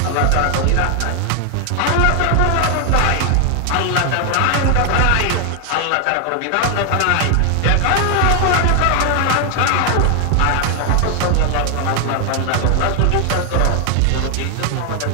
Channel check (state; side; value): different; both; correlation 0.00